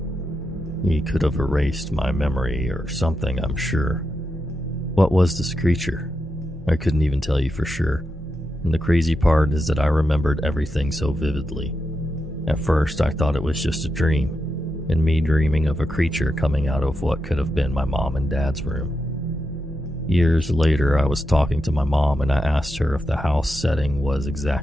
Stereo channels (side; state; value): both; normal; correlation 0.87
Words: He could have erased my memory or something, I'm sure. What was this creature? I couldn't even tell you for sure. And the crazy part is that I remembered everything so vividly. At first, I thought it was just a dream, and me dreaming of a creature coming out of what could have been my mom and dad's room. Years later, I was talking to my mom, and I asked her if the house setting was